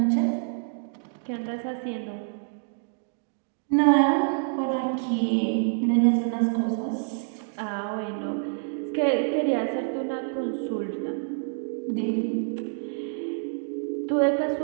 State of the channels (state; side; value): silent; left; digital silence